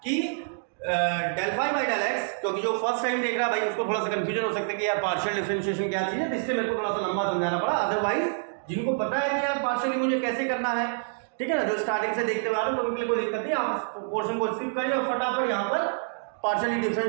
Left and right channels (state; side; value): silent; left; digital silence